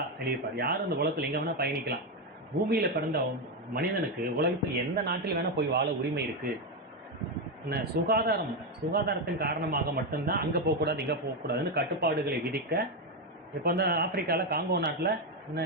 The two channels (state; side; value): normal; both; correlation 0.08